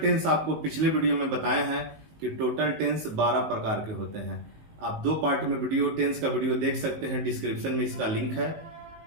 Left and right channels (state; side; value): late; left; 19 ms